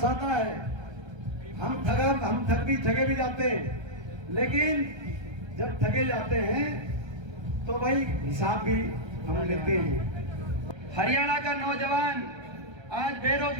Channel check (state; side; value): late; left; 1.3 ms